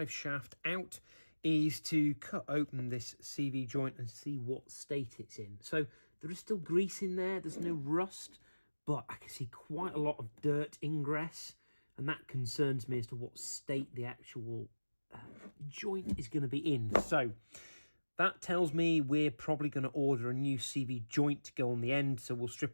shaft out, is to cut open this CV joint and see what state it's in. So there is still grease in there, there's no rust, but I can see quite a lot of dirt ingress, and that concerns me as to what state the actual joint is going to be in. So that tells me we're probably going to order a new CV joint to go on the end. So we'll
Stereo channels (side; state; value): both; inverted; correlation -1.00